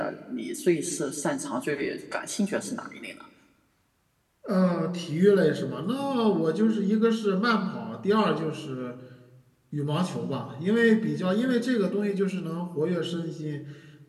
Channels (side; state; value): both; identical; correlation 1.00